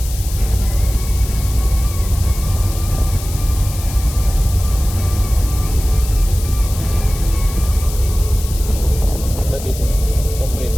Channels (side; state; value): left; noise; hiss, 12 dB below the sound